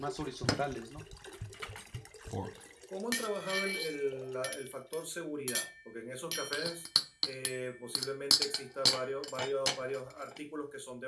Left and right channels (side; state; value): both; identical; correlation 1.00